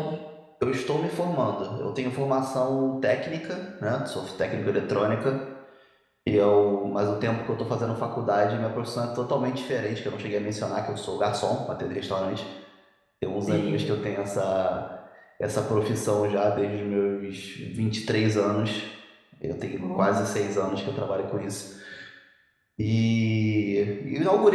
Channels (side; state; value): both; identical; correlation 1.00